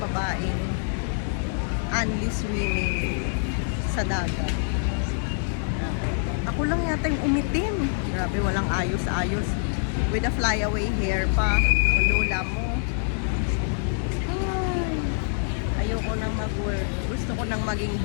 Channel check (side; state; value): right; silent; digital silence